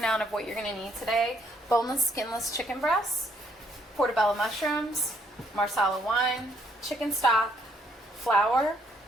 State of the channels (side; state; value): both; normal; correlation 0.69